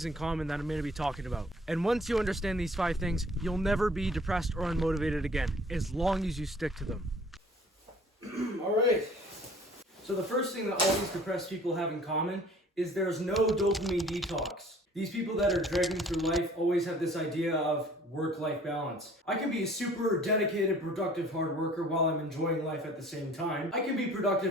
in common that I'm going to be talking about. And once you understand these 5 things, you'll never be depressed or unmotivated again, as long as you stick to them. Alright. So the first thing that all these depressed people have in common is there's no dopamine detox. These people that are dragging through life always have this idea of work-life balance. I can be a super dedicated, productive hard worker while I'm enjoying life at the same time. I can be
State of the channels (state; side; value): normal; both; correlation 0.52